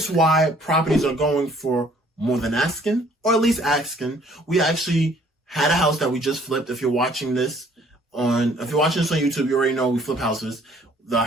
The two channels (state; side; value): normal; both; correlation 0.59